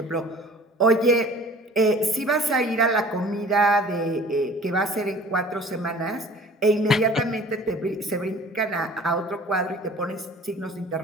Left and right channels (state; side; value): normal; both; correlation 0.47